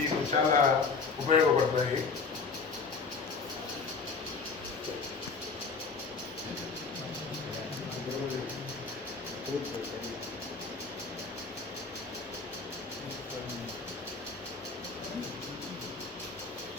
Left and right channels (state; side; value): quieter; right; 4.6 dB